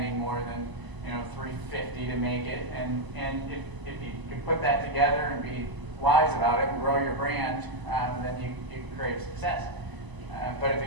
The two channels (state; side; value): late; left; 1.0 ms